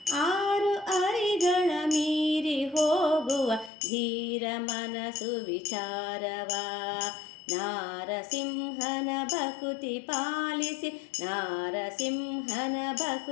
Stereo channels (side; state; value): right; drops out; at 3.7 s